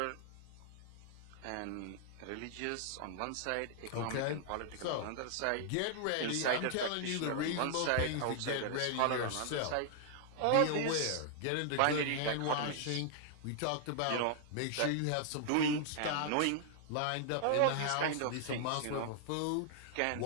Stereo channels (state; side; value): different; both; correlation -0.01